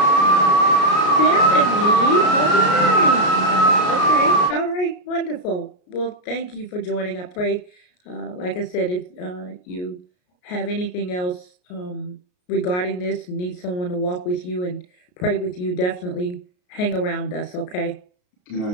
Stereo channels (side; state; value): right; late; 33 ms